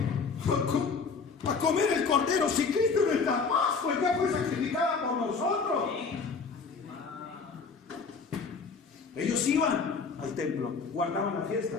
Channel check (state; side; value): quieter; right; 5.0 dB